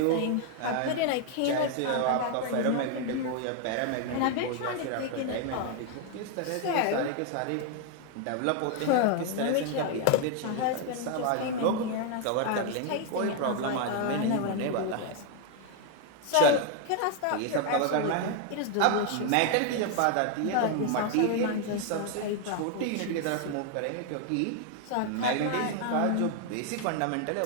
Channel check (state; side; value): different; both; correlation 0.01